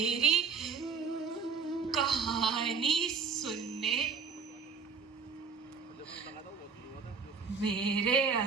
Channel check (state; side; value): quieter; left; 5.7 dB